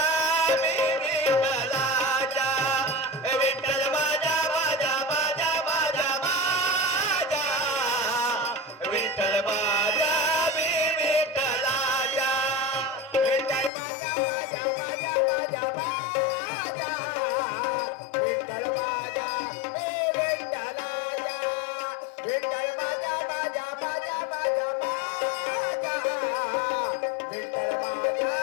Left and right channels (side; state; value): right; drops out; at 13.7 s